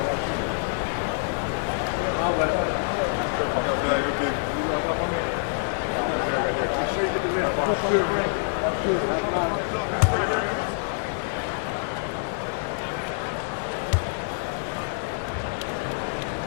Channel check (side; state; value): right; silent; 61 dB below the other